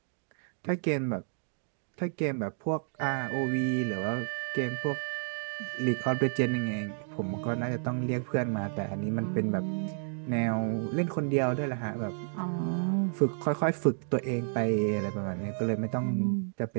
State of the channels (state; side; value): silent; left; digital silence